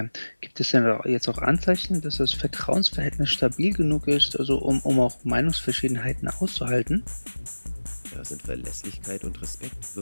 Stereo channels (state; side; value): inverted; both; correlation -1.00